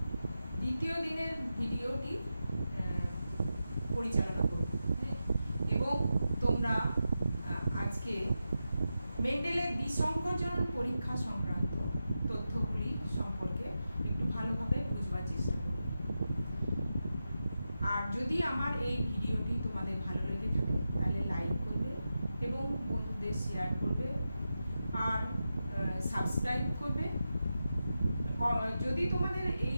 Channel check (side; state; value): both; inverted; correlation -0.90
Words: দ্বিতীয় দিনের ভিডিওটি পরিচালনা করব এবং তোমরা আজকে মেন্ডেলের বিসংকরজন পরীক্ষা সংক্রান্ত তথ্যগুলি সম্পর্কে একটু ভালোভাবে বুঝবার চেষ্টা করবে। আর যদি আমার এই ভিডিওটি তোমাদের ভালো লেগে থাকে তাহলে লাইক করবে এবং বন্ধুদের শেয়ার করবে আর সাবস্ক্রাইব করবে। যদি তোমাদের